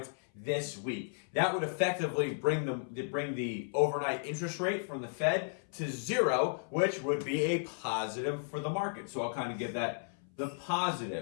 this week. That would effectively bring the overnight interest rate from the Fed to 0, which would be a positive for the market. So I'll kind of give that the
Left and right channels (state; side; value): silent; right; 55 dB below the other